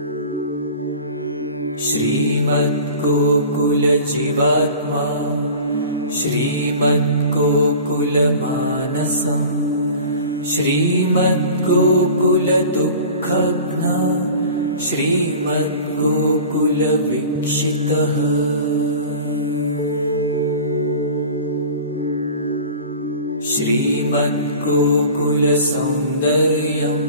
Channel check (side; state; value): both; inverted; correlation -0.40